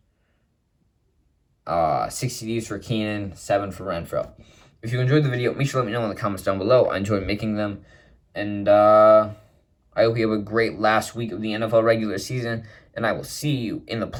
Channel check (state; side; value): identical; both; correlation 1.00